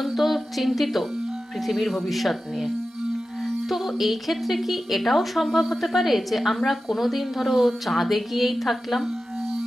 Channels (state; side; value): normal; both; correlation 0.93